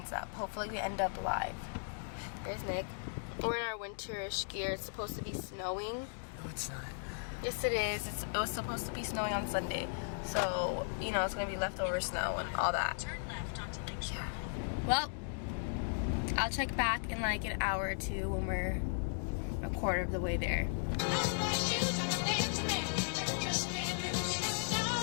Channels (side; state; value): right; silent; digital silence